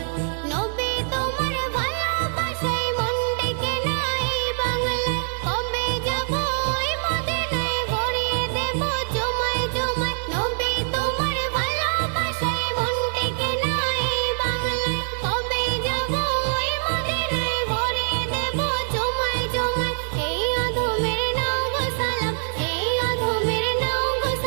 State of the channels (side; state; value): left; silent; 63 dB below the other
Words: নবী তোমার ভালোবাসায় মন ডেকে নাই বাংলায়, কবে যাব ওই মদিনায় ভরিয়ে দেব জমায় জমায়। নবী তোমার ভালোবাসায় মন ডেকে নাই বাংলায়, কবে যাব ওই মদিনায় ভরিয়ে দেব জমায় জমায়। এই আধমের নাও গো সালাম, এই আধমের নাও গো